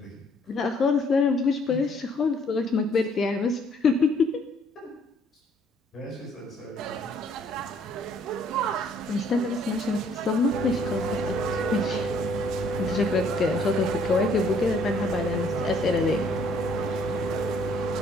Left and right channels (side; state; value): both; normal; correlation 0.62